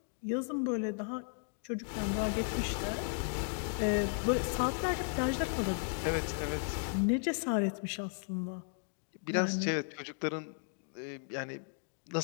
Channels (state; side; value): silent; right; 54 dB below the other